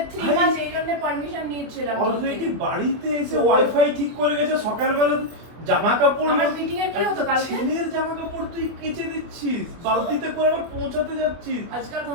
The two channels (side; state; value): left; late; 24 ms